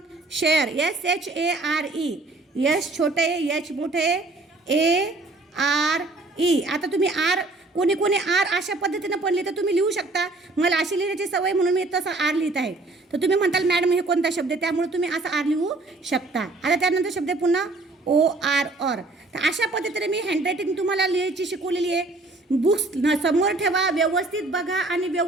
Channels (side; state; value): left; quieter; 3.2 dB